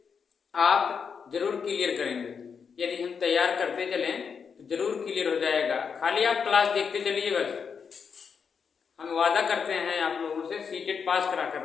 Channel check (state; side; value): quieter; right; 6.3 dB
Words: आप जरूर क्लियर करेंगे। यदि हम तैयार करते चलें तो जरूर क्लियर हो जाएगा। खाली आप क्लास देखते चलिए, बस हम वादा करते हैं आप लोगों से सीटेट पास करा कर